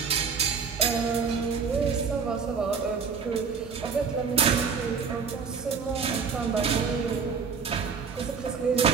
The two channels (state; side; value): quieter; left; 5.7 dB